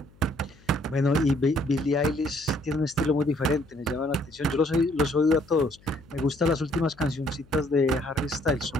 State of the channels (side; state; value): left; noise; hum, 27 dB below the sound